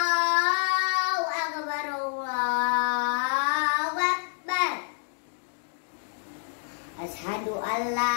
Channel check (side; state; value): right; silent; 59 dB below the other